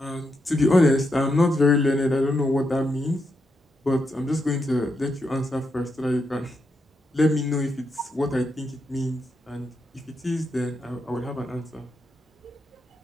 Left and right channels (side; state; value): both; normal; correlation 0.83